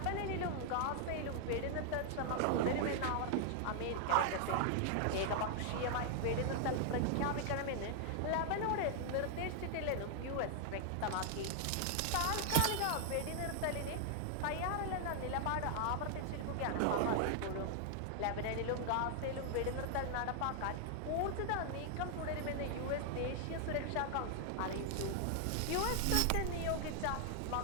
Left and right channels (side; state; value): both; different; correlation 0.00